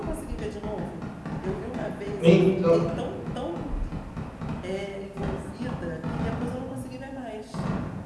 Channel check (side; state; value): both; identical; correlation 1.00